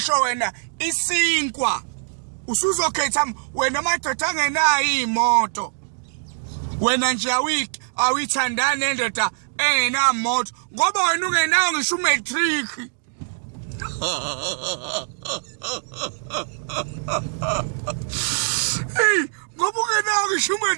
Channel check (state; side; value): silent; left; digital silence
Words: wena isinkwa usuzokhetha wena amadoda angenayo imoto, wena nje awithandana nendoda engenamoto ngoba wena ungenayo ngisho umatric. Hey, ngoba ungenayo ngisho